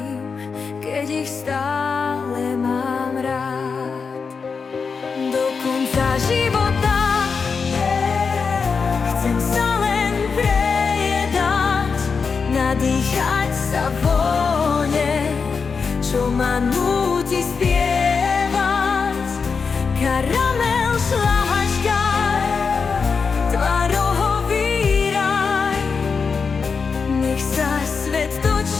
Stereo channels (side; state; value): right; quieter; 5.3 dB